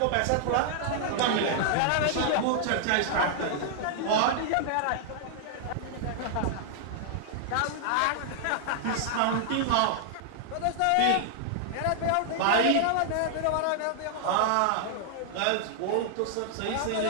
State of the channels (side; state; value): both; different; correlation -0.01